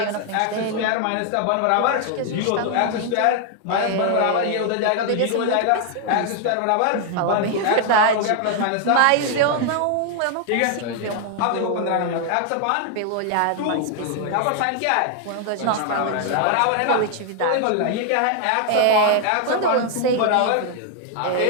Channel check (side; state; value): both; different; correlation 0.00